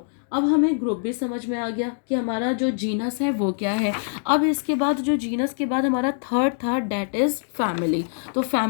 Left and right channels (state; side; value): silent; right; digital silence